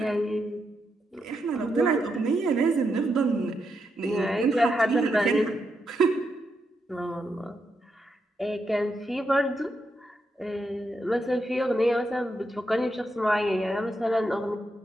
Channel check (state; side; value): normal; both; correlation 0.83